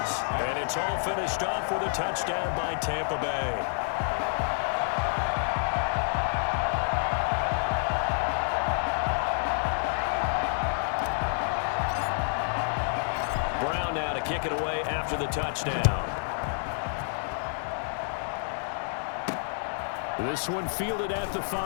And it's all finished off with a touchdown by Tampa Bay. Brown now to kick it away after the touchdown. This one fielded at the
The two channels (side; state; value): right; silent; digital silence